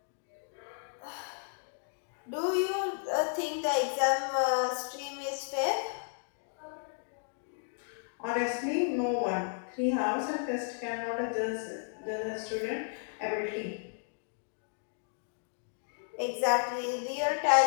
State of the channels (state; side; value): silent; right; digital silence